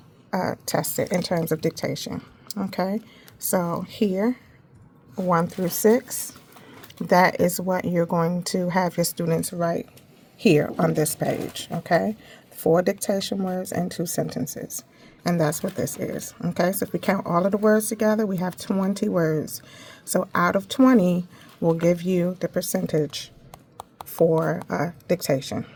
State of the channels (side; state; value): both; identical; correlation 1.00